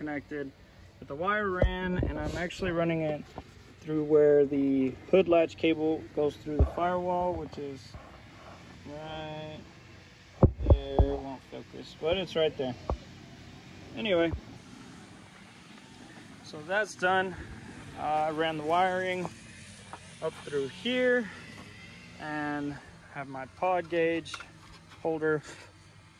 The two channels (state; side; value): identical; both; correlation 1.00